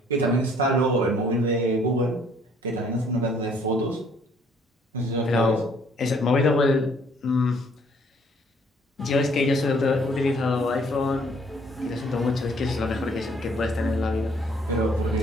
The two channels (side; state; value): both; normal; correlation 0.62